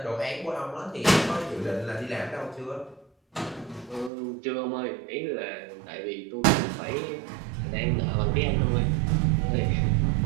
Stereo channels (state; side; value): drops out; left; at 4.1 s